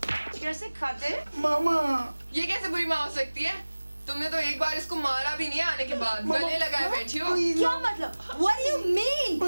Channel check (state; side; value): inverted; both; correlation -1.00